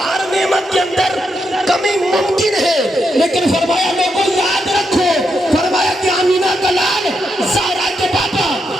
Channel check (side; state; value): both; normal; correlation 0.82